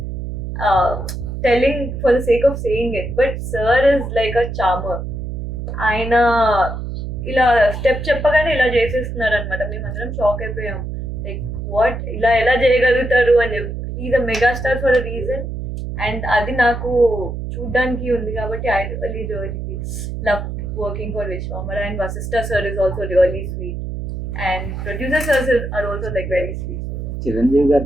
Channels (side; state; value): right; noise; hum, 6 dB below the sound